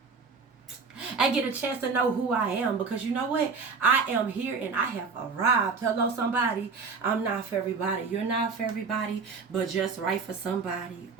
and get a chance to know who I am. Because you know what? I am here and I have arrived. Hello, somebody. I'm not for everybody. You're not for everybody, but just right for somebody.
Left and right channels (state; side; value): quieter; left; 4.9 dB